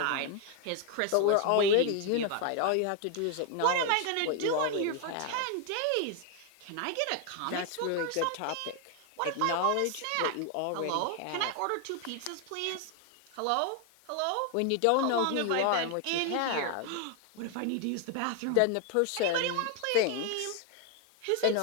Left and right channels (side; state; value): both; different; correlation 0.01